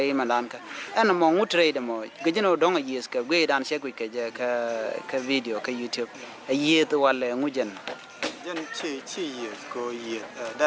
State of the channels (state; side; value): identical; both; correlation 1.00